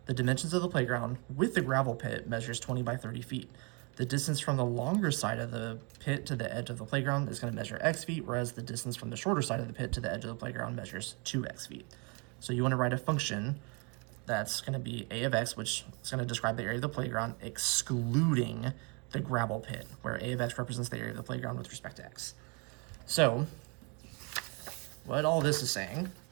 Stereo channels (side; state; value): left; quieter; 32.7 dB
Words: The dimensions of the playground with the gravel pit measures 20 by 30 feet. The distance from the longer side of the pit to the edge of the playground is going to measure x feet, whereas the distance from the shorter side of the pit to the edge of the playground measures 2x feet. So you want to write a function that's going to be a of x, which is going to describe the area of the playground, excluding the gravel pit, where a of x represents the area of the playground with respect to x. So what all this is saying,